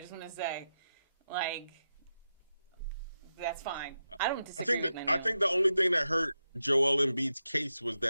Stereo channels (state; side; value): inverted; both; correlation -0.88